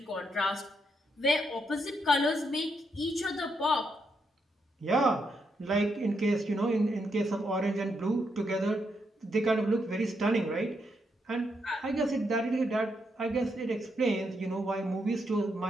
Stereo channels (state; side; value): normal; both; correlation 0.79